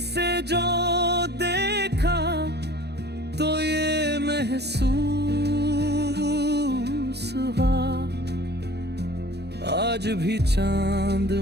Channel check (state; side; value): late; left; 0.48 ms